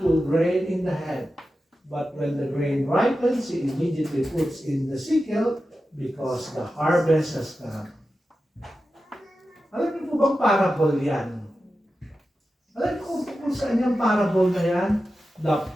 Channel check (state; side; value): normal; both; correlation 0.92